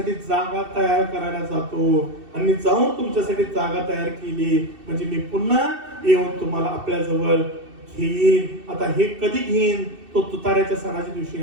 जागा तयार करायला जातो आणि मी जाऊन तुमच्यासाठी जागा तयार केली म्हणजे मी पुन्हा येऊन तुम्हाला आपल्या जवळ घेईन. आता हे कधी घेईन? तो तुताऱ्याच्या सणाच्या दिवशी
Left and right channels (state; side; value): late; left; 2.7 ms